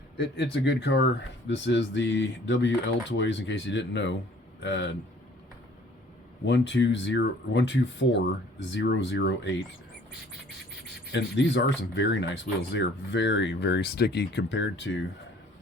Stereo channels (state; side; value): normal; both; correlation 0.55